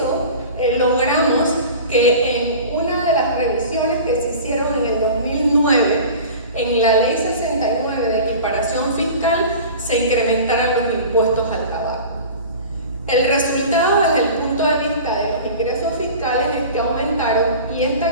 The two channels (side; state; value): both; inverted; correlation -0.38